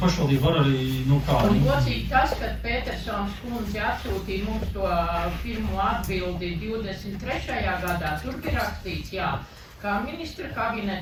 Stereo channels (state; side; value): identical; both; correlation 1.00